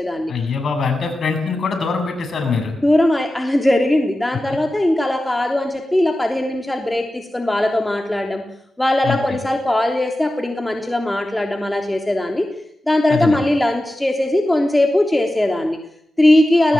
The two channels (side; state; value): both; normal; correlation 0.93